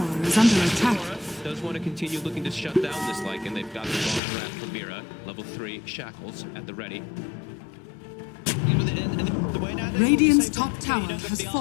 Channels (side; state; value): right; drops out; at 4.2 s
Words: is under attack. Does want to continue looking to shut down this like, and they've got the long draft from Mira, level 3 shackles at the ready. Radiant's top tower has